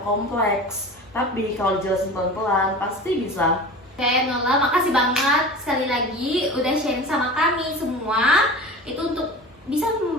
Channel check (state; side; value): normal; both; correlation 0.35